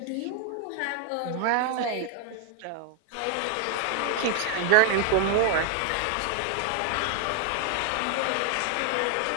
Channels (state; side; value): different; both; correlation 0.00